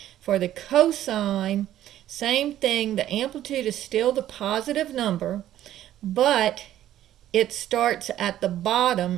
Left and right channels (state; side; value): quieter; left; 12.5 dB